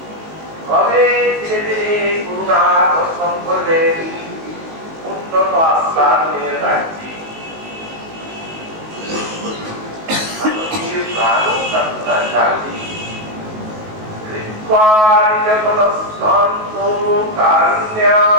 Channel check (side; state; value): left; late; 19 ms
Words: তবে ধীরে ধীরে করুণা দর্শন করলেন উন্নত আস্বাদনের রাজ্যে। প্রাণ প্রার্থনা জাগি